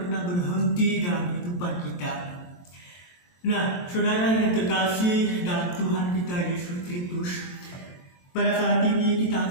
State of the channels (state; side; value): late; right; 23 ms